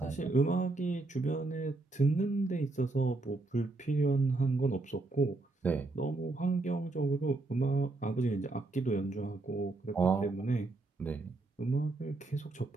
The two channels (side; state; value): left; quieter; 3.2 dB